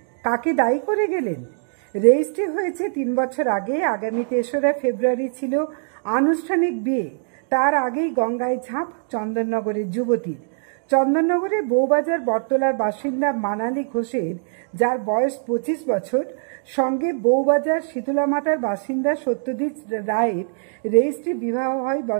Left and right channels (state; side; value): silent; left; digital silence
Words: কাকে দায়ী করে গেলেন? রেজিস্ট্রি হয়েছে 3 বছর আগে। আগামী 3রা ফেব্রুয়ারি ছিল আনুষ্ঠানিক বিয়ে। তার আগেই গঙ্গায় ঝাঁপ চন্দননগরের যুবতীর। চন্দননগরের বউবাজার বটতলার বাসিন্দা মানালি ঘোষের, যার বয়স 25 বছর, সঙ্গে বউবাজার শীতলামাতার বাসিন্দা সত্যজিৎ রায়ের রেজিস্ট্রি বিবাহ হয়